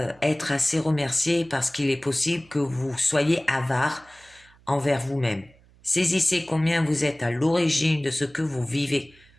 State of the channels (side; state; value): right; noise; hum, 29 dB below the sound